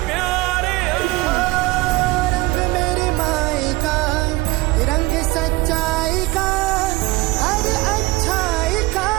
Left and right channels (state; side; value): quieter; left; 21.1 dB